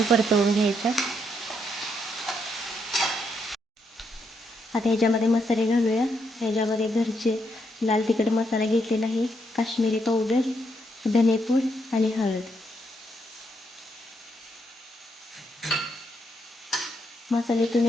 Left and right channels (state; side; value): normal; both; correlation 0.77